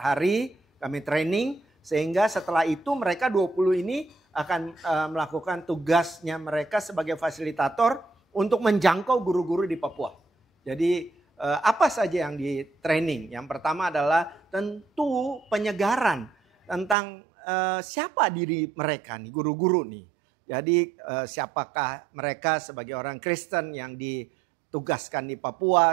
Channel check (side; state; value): left; drops out; at 16.9 s